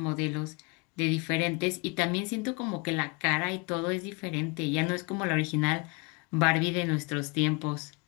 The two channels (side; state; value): right; quieter; 30.0 dB